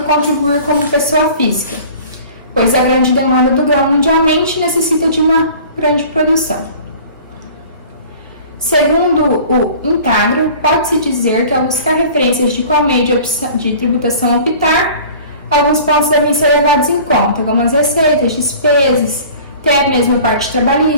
contribuir como pessoa física, pois a grande demanda do grão mundialmente necessita de uma grande produção. Segundo o Intagro, pode-se dizer que ao buscar referências de qual meio de tributação optar, alguns pontos devem ser levados em conta, como as receitas, despesas, até mesmo a parte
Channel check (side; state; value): both; inverted; correlation -0.44